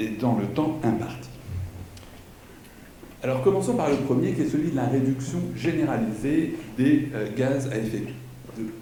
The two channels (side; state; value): both; identical; correlation 1.00